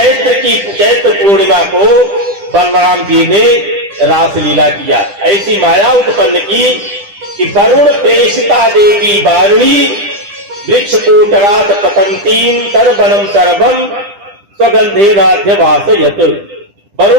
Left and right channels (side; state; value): left; late; 10 ms